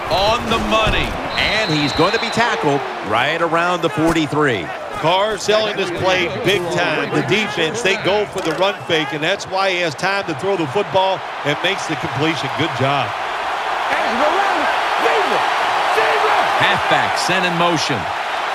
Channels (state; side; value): identical; both; correlation 1.00